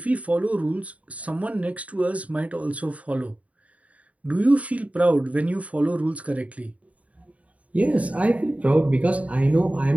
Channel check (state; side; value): late; left; 0.068 ms